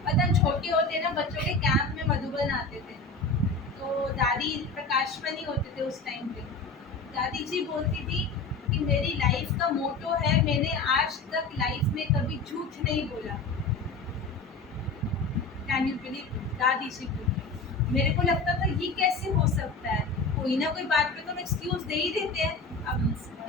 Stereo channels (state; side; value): quieter; right; 3.7 dB